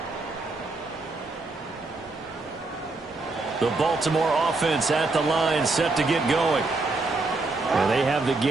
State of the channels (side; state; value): left; quieter; 3.4 dB